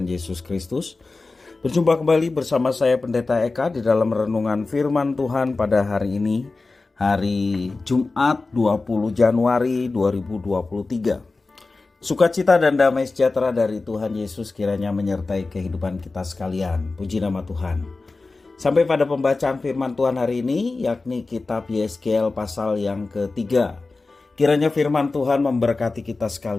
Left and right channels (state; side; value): quieter; right; 3.6 dB